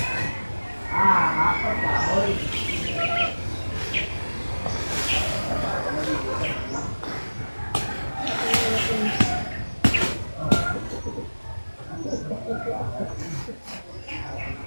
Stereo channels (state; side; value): inverted; both; correlation -1.00